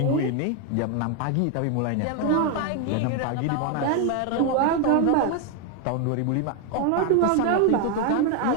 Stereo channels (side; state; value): both; different; correlation 0.01